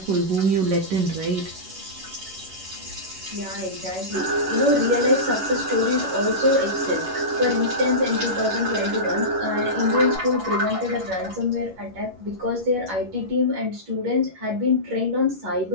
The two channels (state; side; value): late; left; 11 ms